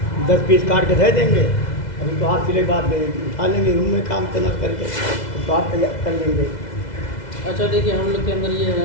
10 पीस काट के दे देंगे। अभी तो हाथ सिले के बाद उठा लेंगे, रूम में काम करना करके तो आप तैयार कर लेंगे। अच्छा देखिए, हम लोग के अंदर ये है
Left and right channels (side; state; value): right; late; 2.0 ms